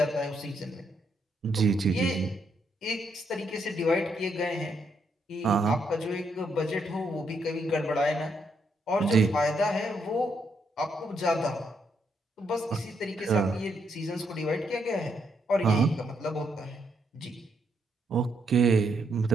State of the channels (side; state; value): both; normal; correlation 0.76